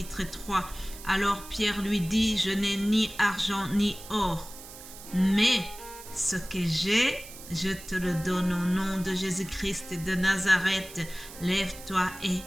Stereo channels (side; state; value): right; noise; hiss, 16 dB below the sound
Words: 3. Alors Pierre lui dit, je n'ai ni argent ni or, mais ce que j'ai, je te le donne au nom de Jésus-Christ de Nazareth. Lève-toi et